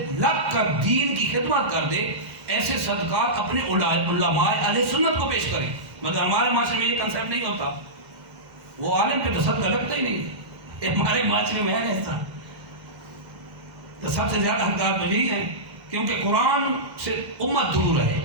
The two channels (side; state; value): left; late; 2.1 ms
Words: لگ کر دین کی خدمت کر دے، ایسے صدقات اپنے علماء اہل سنت کو پیش کریں. مگر ہمارے معاشرے میں یہ کنسیپٹ نہیں ہوتا. وہ عالم پہ تو صدقہ لگتا ہی نہیں. ہمارے معاشرے میں ہے ایسا. تو سب سے زیادہ حقدار تو یہی ہے، کیونکہ قرآن سے امت دور ہے،